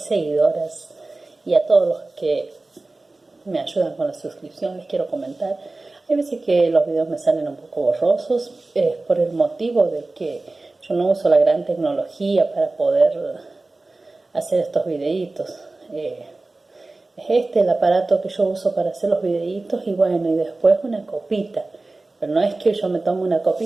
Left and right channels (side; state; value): left; quieter; 3.2 dB